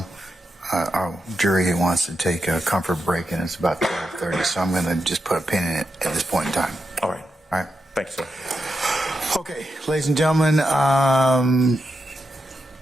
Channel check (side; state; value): both; normal; correlation 0.87